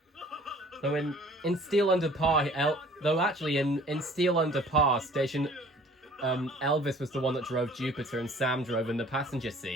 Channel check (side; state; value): both; normal; correlation 0.52